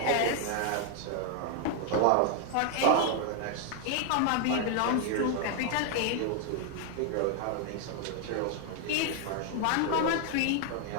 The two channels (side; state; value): both; different; correlation 0.00